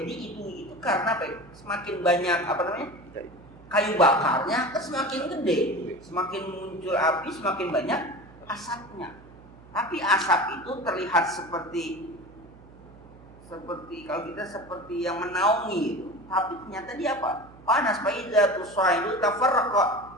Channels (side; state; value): right; noise; hum, 22 dB below the sound